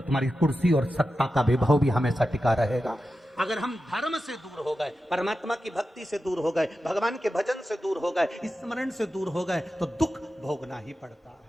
कुर्सी और सत्ता का वैभव भी हमेशा टिका रहेगा। अगर हम धर्म से दूर हो गए, परमात्मा की भक्ति से दूर हो गए, भगवान के भजन से दूर हो गए, स्मरण से दूर हो गए, तो दुख भोगना ही पड़ता है।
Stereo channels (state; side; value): normal; both; correlation 0.91